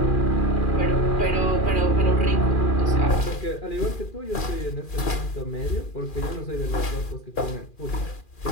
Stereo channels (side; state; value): right; late; 2.4 ms